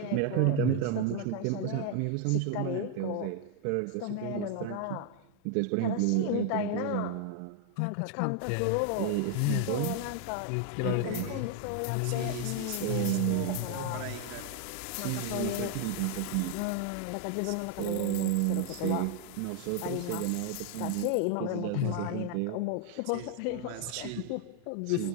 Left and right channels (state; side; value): different; both; correlation 0.00